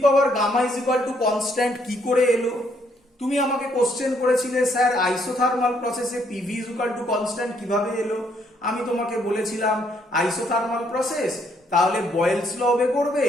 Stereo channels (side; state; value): both; normal; correlation 0.70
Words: power gamma is equal to constant কি করে এলো? তুমি আমাকে কোশ্চেন করেছিলে স্যার আইসোথার্মাল প্রসেসে PV is equal to constant কিভাবে এলো? আমি তোমাকে বলেছিলাম আইসোথার্মাল প্রসেস, তাহলে বয়েলস ল ওবে করবে,